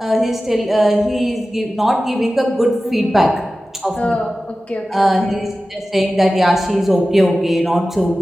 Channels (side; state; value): both; normal; correlation 0.95